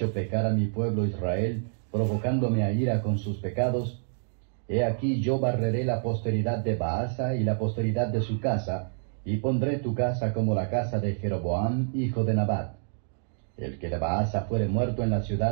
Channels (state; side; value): silent; left; digital silence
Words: pecar a mi pueblo Israel, provocándome a ira con sus pecados. He aquí yo barreré la posteridad de Baasa y la posteridad de su casa, y pondré tu casa como la casa de Jeroboam, hijo de Nabat. El que de Baasa fuere muerto en la